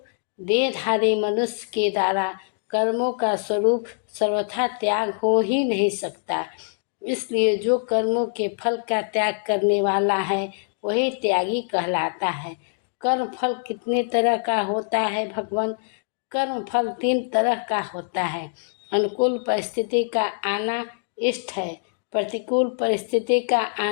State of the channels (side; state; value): right; silent; digital silence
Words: देहधारी मनुष्य के द्वारा कर्मों का स्वरूप सर्वथा त्याग हो ही नहीं सकता। इसलिए जो कर्मों के फल का त्याग करने वाला है, वही त्यागी कहलाता है। कर्म फल कितने तरह का होता है भगवान? कर्म फल 3 तरह का होता है। अनुकूल परिस्थिति का आना इष्ट है, प्रतिकूल परिस्थिति का